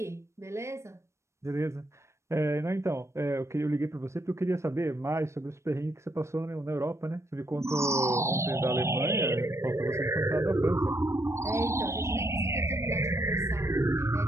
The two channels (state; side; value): late; left; 0.13 ms